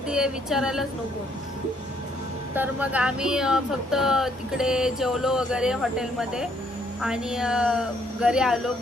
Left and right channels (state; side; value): normal; both; correlation 0.69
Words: आहे विचारायलाच नको. तर मग आम्ही फक्त तिकडे जेवलो वगैरे हॉटेलमध्ये, आणि घरी आलो.